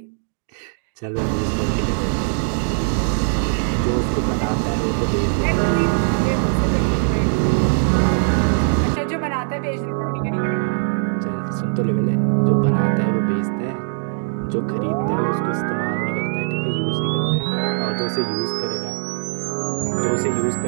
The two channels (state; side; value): silent; left; digital silence